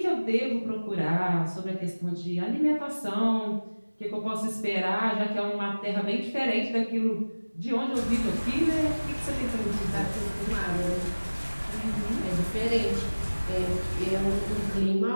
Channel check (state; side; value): inverted; both; correlation -1.00